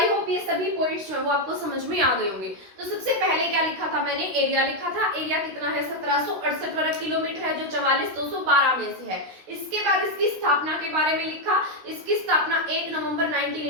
होप ये सभी पॉइंट्स जो है वो आपको समझ में आ गए होंगे। तो सबसे पहले क्या लिखा था मैंने? एरिया लिखा था। एरिया कितना है? 1768 वर्ग किलोमीटर है, जो 44,212 में से है। इसके बाद इसकी स्थापना के बारे में लिखा। इसकी स्थापना 1 नवंबर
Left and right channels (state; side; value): late; left; 16 ms